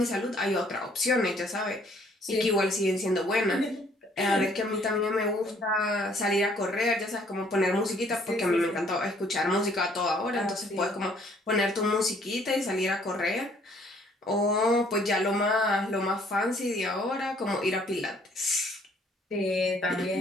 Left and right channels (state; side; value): normal; both; correlation 0.62